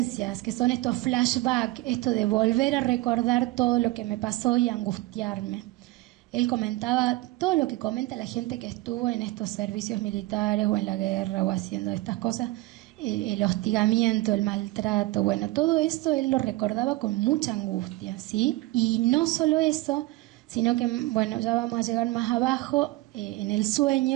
que son estos flashbacks, esto de volver a recordar todo lo que me pasó y angustiarme. Él comentaba todo lo que comenta la gente que estuvo en estos servicios militares o en la guerra o haciendo estas cosas, el hostigamiento, el maltrato, bueno, todo eso él lo recordaba con mucha angustia, ¿sí? Y no solo eso, sino que, bueno, ya vamos a llegar más abajo, en el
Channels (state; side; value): quieter; left; 19.0 dB